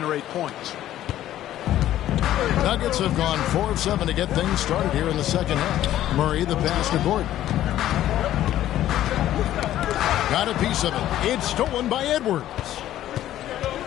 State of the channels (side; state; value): right; quieter; 12.9 dB